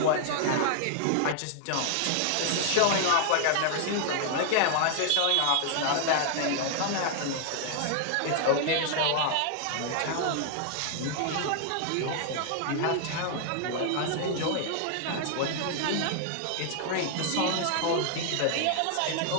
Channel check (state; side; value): different; both; correlation 0.00